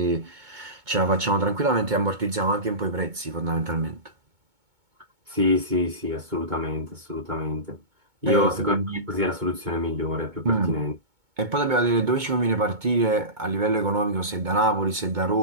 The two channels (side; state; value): left; late; 2.2 ms